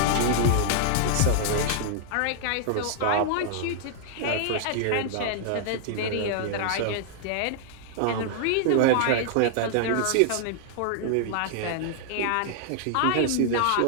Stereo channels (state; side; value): different; both; correlation 0.00